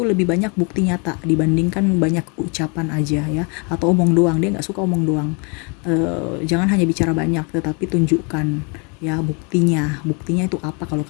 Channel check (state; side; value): quieter; right; 34.0 dB